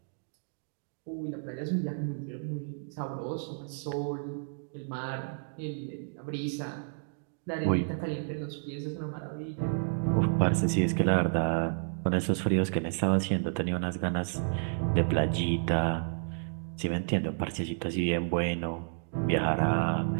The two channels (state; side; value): silent; left; digital silence